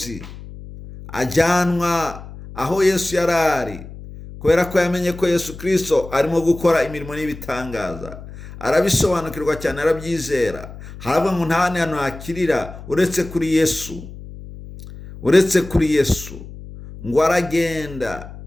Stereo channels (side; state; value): left; noise; hum, 14 dB below the sound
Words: ajyanwa aho Yesu yarari, kubera ko yamenye ko Yesu Kristo arimo gukora imirimo n'ibitangaza. Arabisobanukirwa cyane, arabyizera. Haravuga ngo nta hantu hakirira uretse kuri Yesu. Ngo aragenda.